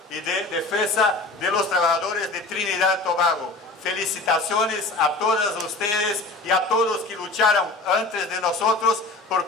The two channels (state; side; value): quieter; right; 3.2 dB